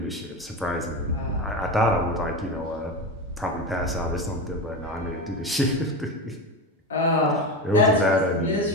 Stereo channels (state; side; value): normal; both; correlation 0.21